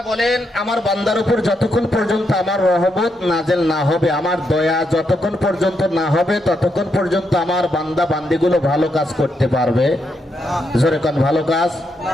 বলেন, আমার বান্দার উপর যতক্ষণ পর্যন্ত আমার রহমত নাজেল না হবে, আমার দয়া যতক্ষণ পর্যন্ত না হবে, ততক্ষণ পর্যন্ত আমার বান্দা বান্দিগুলো ভালো কাজ করতে পারবে। জোরে কোন ভালো কাজ।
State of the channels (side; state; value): both; normal; correlation 0.80